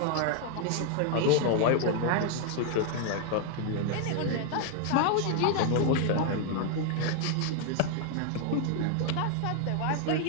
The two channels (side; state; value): both; different; correlation 0.00